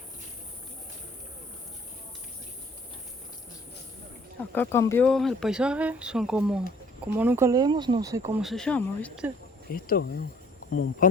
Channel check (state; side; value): normal; both; correlation 0.57